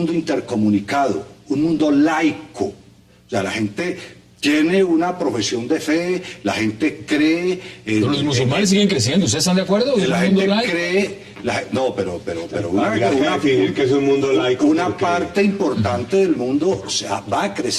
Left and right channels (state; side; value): identical; both; correlation 1.00